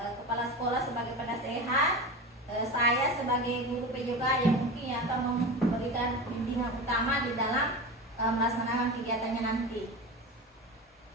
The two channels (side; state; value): both; normal; correlation 0.27